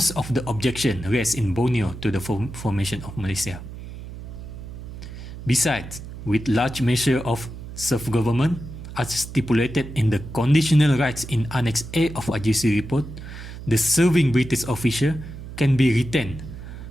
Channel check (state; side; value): noise; right; hum, 12 dB below the sound